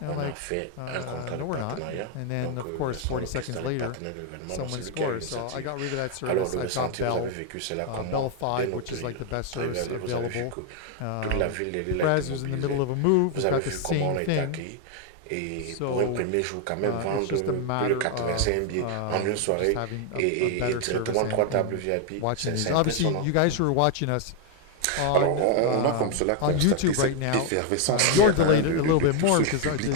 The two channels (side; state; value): both; different; correlation 0.01